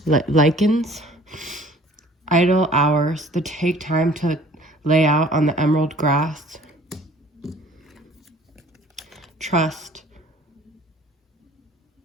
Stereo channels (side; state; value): both; normal; correlation 0.52